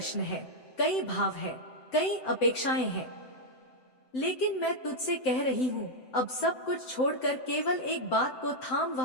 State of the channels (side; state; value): right; late; 7.8 ms